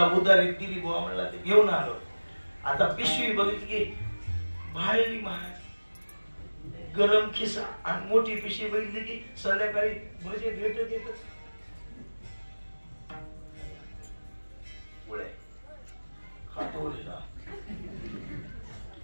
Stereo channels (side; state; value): both; inverted; correlation -1.00